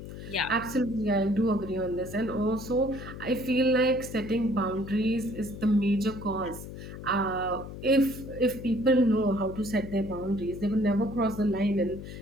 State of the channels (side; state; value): left; noise; hum, 11 dB below the sound